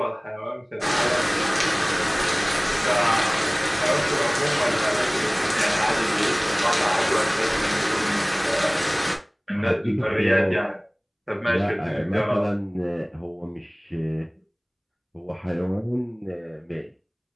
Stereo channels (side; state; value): both; identical; correlation 1.00